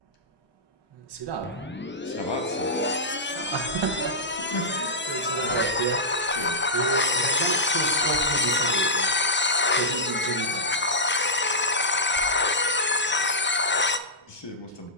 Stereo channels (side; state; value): both; normal; correlation -0.11